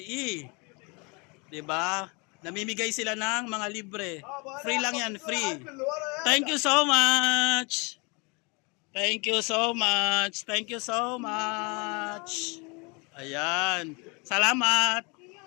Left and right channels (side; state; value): right; quieter; 30.3 dB